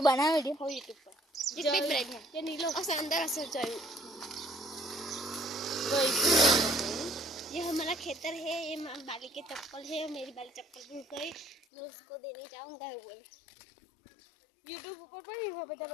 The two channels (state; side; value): drops out; right; at 11.6 s